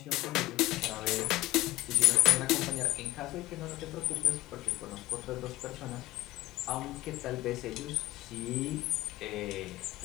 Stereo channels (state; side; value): quieter; right; 17.9 dB